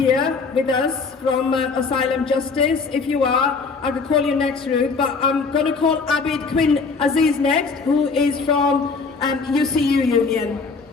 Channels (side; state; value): right; quieter; 4.6 dB